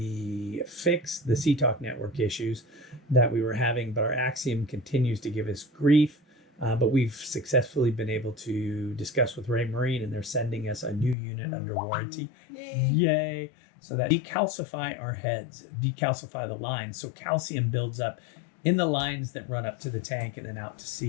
fixed the CTalk network issues that we were having, but our Axiom continues to give us grief. But we've successfully been able to discuss with Raymarine, and they're sending us a new unit under warranty. Yay! So that decalcify our heads, decalcify the lines. So calcium builds up in the lines that run up to the tank and then out to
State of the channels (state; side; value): drops out; right; at 11.2 s